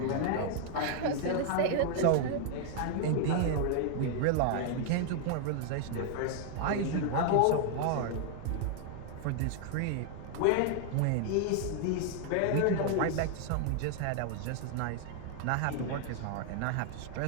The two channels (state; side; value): different; both; correlation 0.00